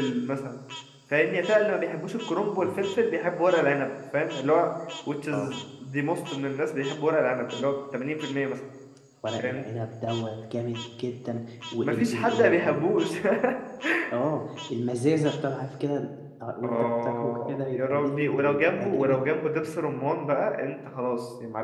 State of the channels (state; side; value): identical; both; correlation 1.00